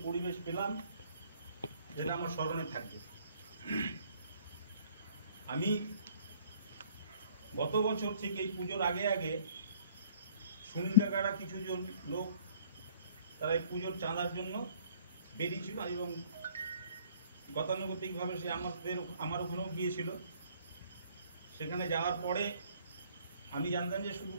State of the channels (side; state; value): both; inverted; correlation -0.58